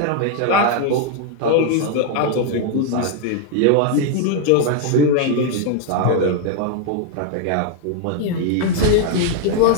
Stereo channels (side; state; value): both; different; correlation 0.00